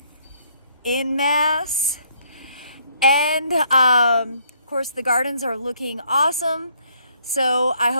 in mass. And of course, the gardens are looking awesome. So I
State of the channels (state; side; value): inverted; both; correlation -0.67